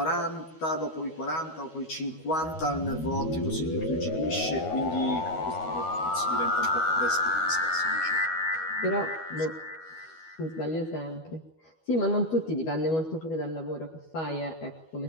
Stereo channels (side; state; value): right; late; 12 ms